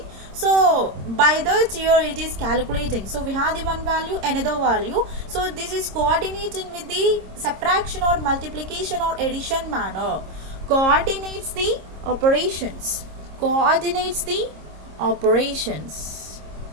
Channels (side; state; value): left; late; 26 ms